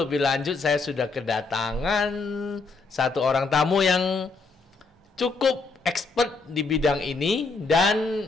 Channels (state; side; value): quieter; right; 4.0 dB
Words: lanjut, saya sudah kedatangan satu orang tamu yang cukup expert di bidang ini, dan